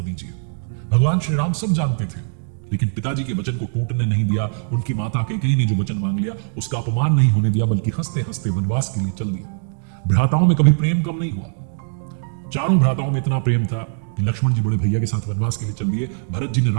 दीजिए। भगवान श्री राम सब जानते थे, लेकिन पिताजी के वचन को टूटने नहीं दिया। उनकी माता कैकेयी ने जो वचन मांग लिया उसका अपमान नहीं होने दिया, बल्कि हंसते हंसते वनवास के लिए चल दिया। भ्राताओं में कभी प्रेम कम नहीं हुआ। चारों भ्राताओं में इतना प्रेम था कि लक्ष्मण जी बड़े भैया के साथ वनवास के लिए चल दिए, भरत जी ने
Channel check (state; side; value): silent; left; digital silence